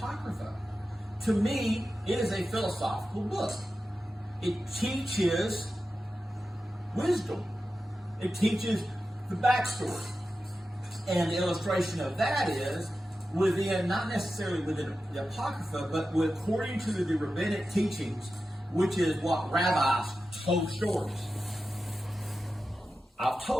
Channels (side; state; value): both; normal; correlation 0.92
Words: To me, it is a philosophical book. It teaches wisdom. It teaches the backstory. And the illustration of that is within, not necessarily within the Apocrypha, but according to the rabbinic teachings, which is what rabbis told stories. I've